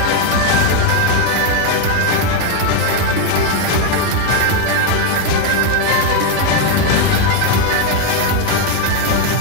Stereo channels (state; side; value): different; both; correlation 0.02